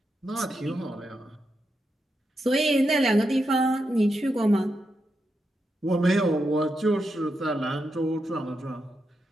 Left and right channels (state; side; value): normal; both; correlation 0.85